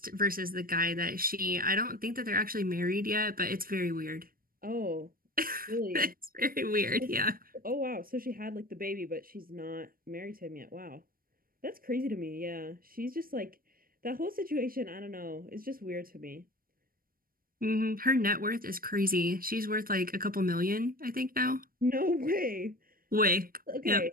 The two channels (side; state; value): left; late; 0.42 ms